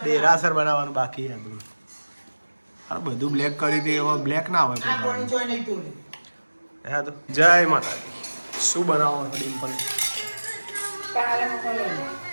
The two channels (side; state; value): both; inverted; correlation -1.00